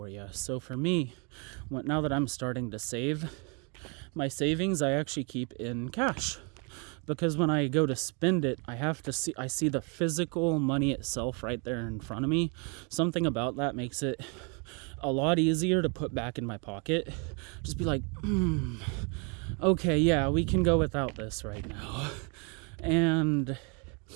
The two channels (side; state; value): left; quieter; 34.4 dB